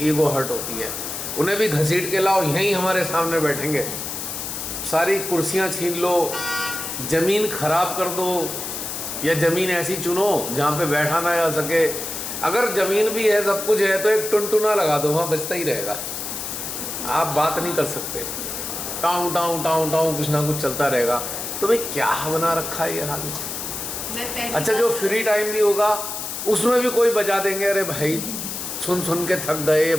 ईगो हर्ट होती है, उन्हें भी घसीट के लाओ, यहीं हमारे सामने बैठेंगे। सारी कुर्सियां छीन लो, ज़मीन खराब कर दो, या ज़मीन ऐसी चुनो जहाँ पे बैठा ना जा सके। अगर ज़मीन भी है, सब कुछ है, तो एक टुनटुना लगा दो, वहाँ बचता ही रहेगा। आप बात नहीं कर सकते, टाउं टाउं टाउं टाउं कुछ ना कुछ चलता रहेगा। तो भाई क्या बना रखा है ये हालत। अच्छा, जो फ्री टाइम भी होगा उसमें भी कोई बजा देंगे, अरे भाई सुन सुन के थक गए ये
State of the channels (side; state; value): left; noise; hiss, 6 dB below the sound